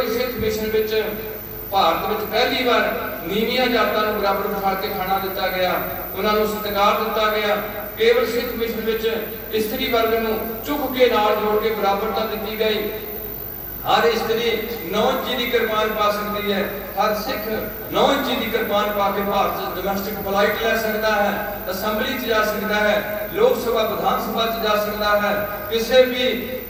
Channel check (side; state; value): both; identical; correlation 1.00